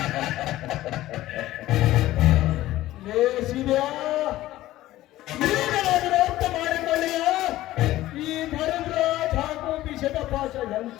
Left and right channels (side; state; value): right; quieter; 15.5 dB